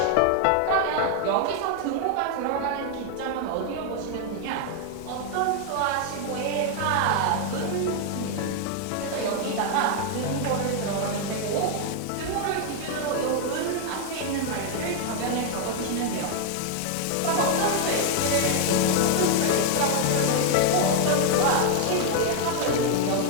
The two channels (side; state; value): both; different; correlation 0.00